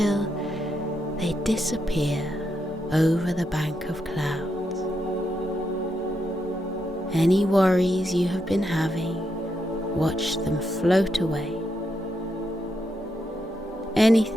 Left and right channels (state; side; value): normal; both; correlation 0.82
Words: they disappear over the bank of clouds. Any worries you have been having, watch them float away.